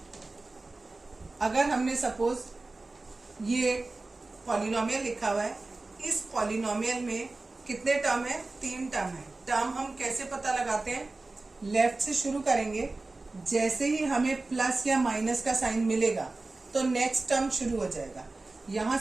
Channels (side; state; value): left; quieter; 3.3 dB